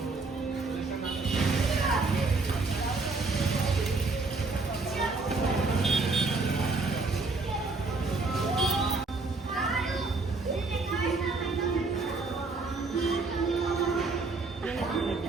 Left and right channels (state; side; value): quieter; left; 3.7 dB